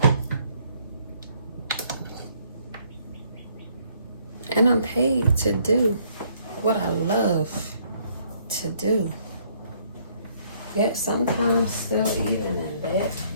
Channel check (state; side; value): inverted; both; correlation -0.66